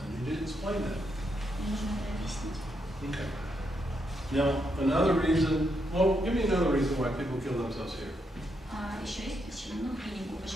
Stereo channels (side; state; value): both; normal; correlation 0.80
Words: you did explain that. Мне нужно это объяснить. Okay. Now, another reason, well, give me another reason why people kill themselves here. Еще есть причина, ну, клинику.